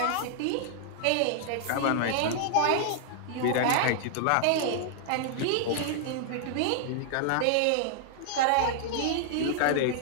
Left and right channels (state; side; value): different; both; correlation -0.01